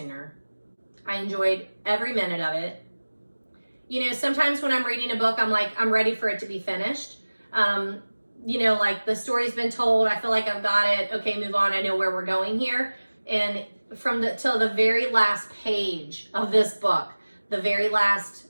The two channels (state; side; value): inverted; both; correlation -1.00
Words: I enjoyed every minute of it. You know, sometimes when I'm reading a book, I'm like, I'm ready for it to be finished. You know, like the story's been told. I feel like I've got it. Okay, move on. I know where we're going here. And till the very last page of this book, the very last